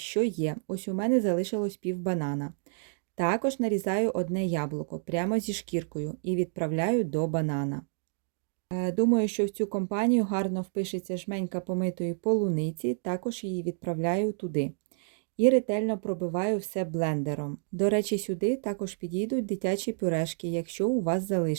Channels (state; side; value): silent; left; digital silence